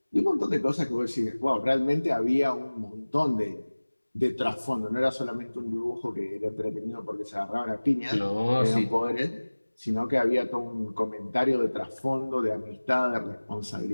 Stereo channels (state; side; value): inverted; both; correlation -1.00